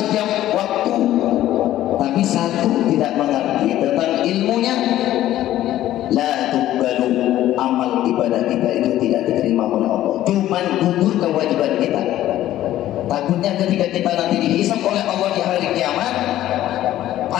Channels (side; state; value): right; quieter; 13.5 dB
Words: waktu, tapi satu tidak mengerti tentang ilmunya. La tuqbalu, amal ibadah kita itu tidak diterima oleh Allah. Cuman gugur kewajiban kita. Takutnya ketika kita nanti dihisab oleh Allah di hari kiamat,